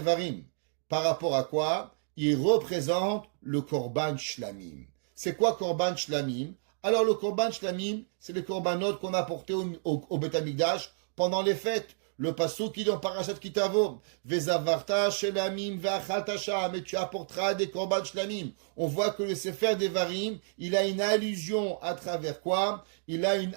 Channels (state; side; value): silent; left; digital silence